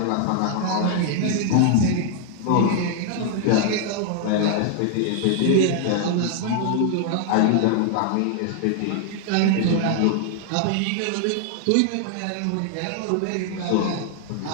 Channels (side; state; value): both; different; correlation 0.00